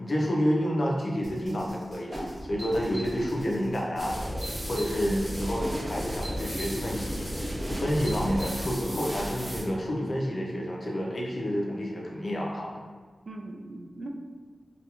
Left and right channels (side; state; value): both; normal; correlation 0.95